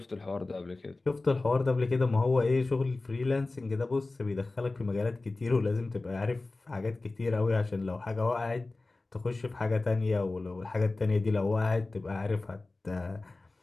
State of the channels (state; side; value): quieter; right; 3.2 dB